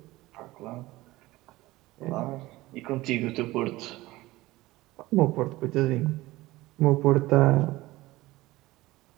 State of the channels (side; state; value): left; quieter; 18.7 dB